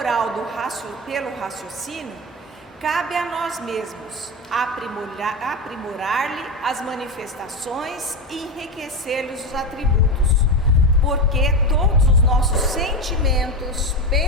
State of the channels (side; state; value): both; normal; correlation 0.17